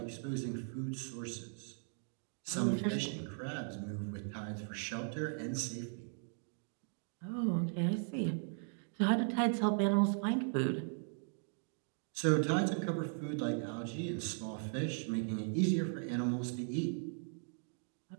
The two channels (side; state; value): left; silent; 52 dB below the other